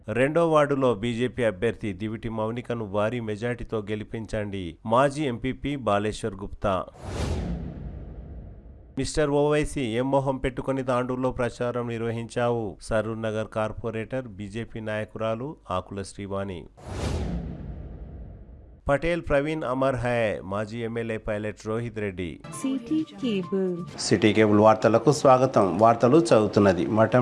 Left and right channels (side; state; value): both; identical; correlation 1.00